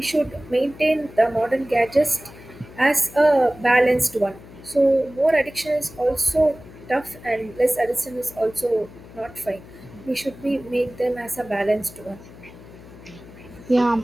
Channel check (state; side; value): noise; left; hum, 19 dB below the sound